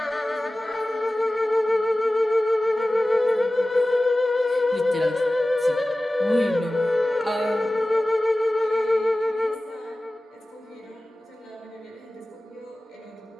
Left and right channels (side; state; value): both; normal; correlation 0.97